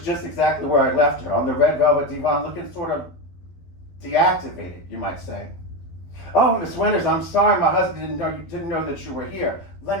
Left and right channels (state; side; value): late; right; 12 ms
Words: just exactly where I left her, on the red velvet divan, looking sort of deactivated, you might say. 'Oh, Miss Winters, I'm sorry my husband didn't know that you were here. Let